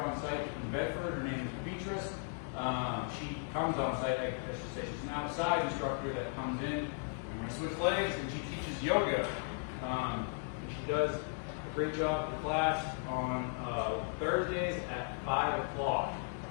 site in Bedford. Her name is Beatrice. She comes on site, I should say. She's now a side instructor that comes in, and we're going to switch legs, and she teaches yoga. And she does a great job for class on Thursdays at 5 o'clock.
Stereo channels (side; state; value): right; silent; 54 dB below the other